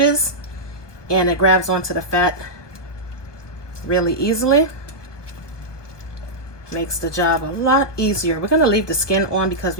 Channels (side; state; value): right; late; 1.2 ms